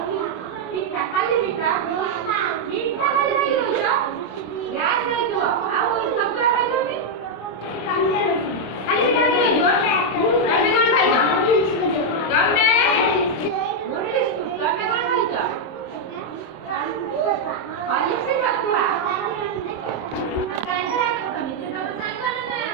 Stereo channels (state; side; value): late; right; 27 ms